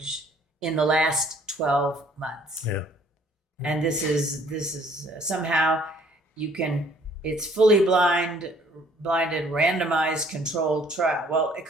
in the last 12 months. Yeah. And this is somehow it's fully blinded, randomized, controlled trial. Well, it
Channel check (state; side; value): normal; both; correlation 0.59